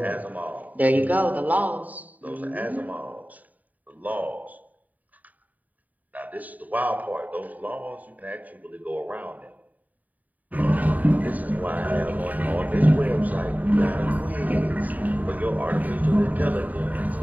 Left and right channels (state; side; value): late; left; 0.076 ms